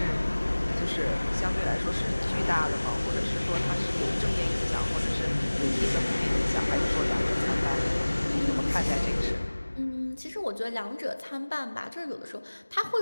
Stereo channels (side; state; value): both; inverted; correlation -1.00